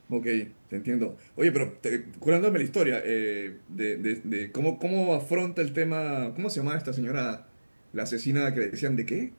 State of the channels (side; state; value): both; inverted; correlation -1.00